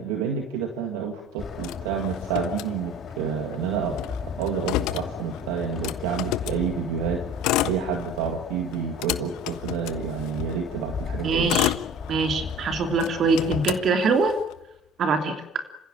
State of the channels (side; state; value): both; normal; correlation 0.42